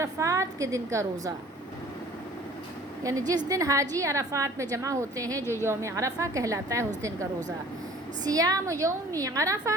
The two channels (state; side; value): normal; both; correlation 0.50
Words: کے دن کا روزہ، یعنی جس دن حاجی عرفات میں جمع ہوتے ہیں جو یوم عرفہ کہلاتا ہے، اس دن کا روزہ۔ سیام یوم